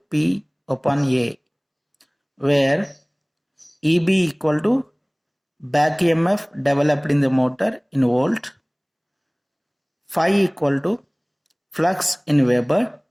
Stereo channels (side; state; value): both; identical; correlation 1.00